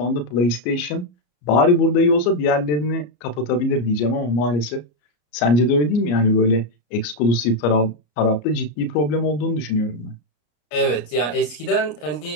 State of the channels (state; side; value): late; right; 33 ms